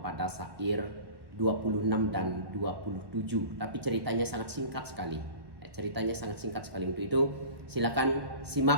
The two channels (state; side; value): late; left; 1.1 ms